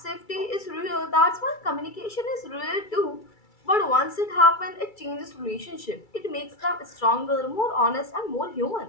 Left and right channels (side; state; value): right; late; 2.3 ms